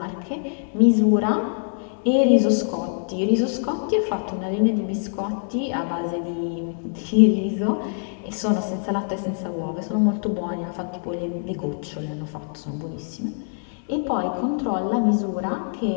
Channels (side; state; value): right; silent; 62 dB below the other